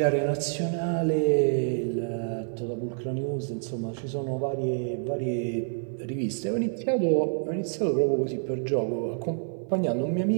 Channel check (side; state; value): left; silent; 55 dB below the other